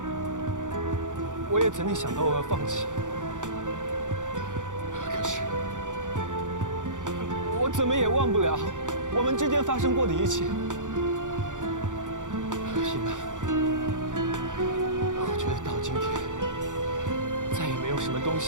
我也曾经想到我要放弃，可是我怎么也忘不了我们之间发生过的一切。伊曼，我觉得到今天，再也没有什么东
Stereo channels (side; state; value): left; late; 0.86 ms